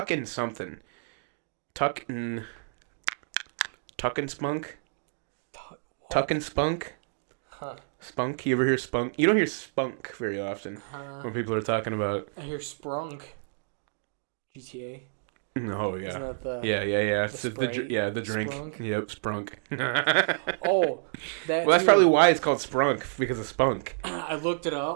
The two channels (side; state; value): left; silent; digital silence